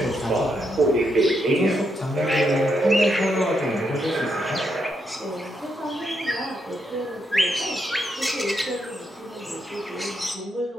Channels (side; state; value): both; normal; correlation 0.79